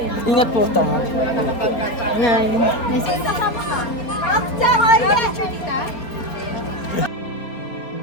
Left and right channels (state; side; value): late; right; 4.3 ms